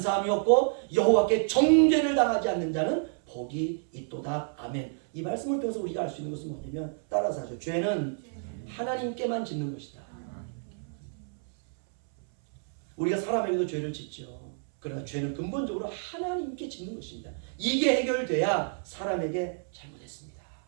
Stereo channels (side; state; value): left; silent; 58 dB below the other